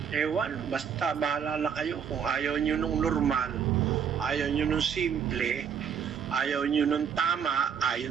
Ewan, basta bahala na kayo. Kung ayaw nyo nung normal, ayaw nyo nung simple, ayaw nyo nung tama,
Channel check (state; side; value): quieter; left; 7.5 dB